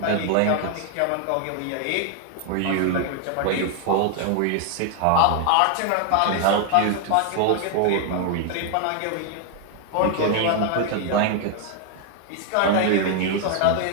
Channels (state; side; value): different; both; correlation 0.00